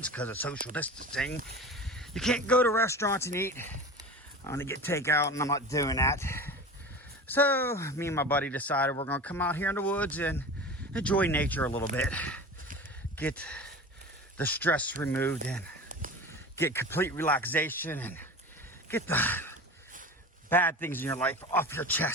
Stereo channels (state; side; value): normal; both; correlation 0.33